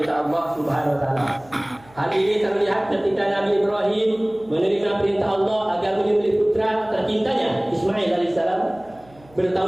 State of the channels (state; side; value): noise; right; hum, 27 dB below the sound